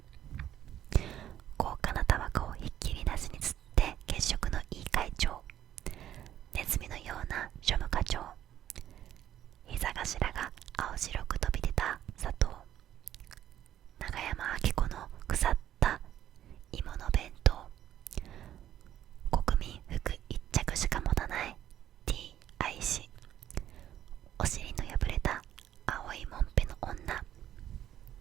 高価なタバコをひっきりなしに吸って血色のいい会長、ネズミのような庶務課長、膝頭が青白く飛び出た佐藤、長山明子の腐った芋の弁当、国民服一着しか持たない T 愛し、お尻の破れた青いもんぺの女、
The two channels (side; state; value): left; quieter; 11.5 dB